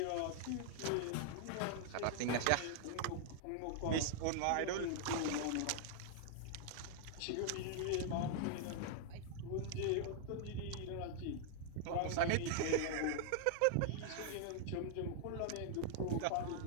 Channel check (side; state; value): both; different; correlation -0.01